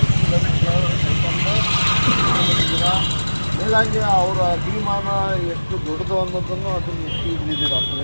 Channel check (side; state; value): both; inverted; correlation -1.00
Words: ಮೇಲಾಗಿ ಅವರ ಅಭಿಮಾನ ಎಷ್ಟು ದೊಡ್ಡದು ಅನ್ನೋದನ್ನು ಅದನ್ನು ಎಷ್ಟು ಇಲ್ಲಿದ್ದೀರಾ